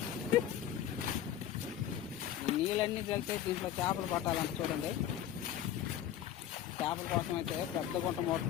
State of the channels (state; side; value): quieter; right; 10.9 dB